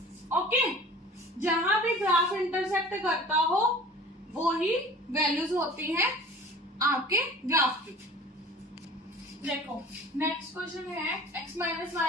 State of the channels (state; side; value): normal; both; correlation 0.43